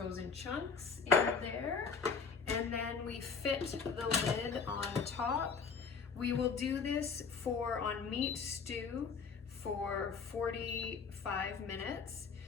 chunks in there. And then we fit the lid on top. We will do this on meat stew for 45 minutes.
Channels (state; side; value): quieter; right; 5.3 dB